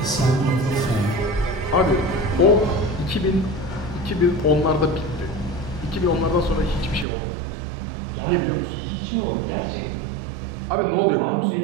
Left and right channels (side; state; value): left; drops out; at 7.1 s